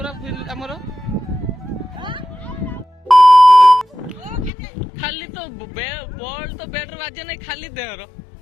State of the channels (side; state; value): right; drops out; at 4.5 s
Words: हमर खाली तो बॉल तो बैट बाजे नहीं खाली देहर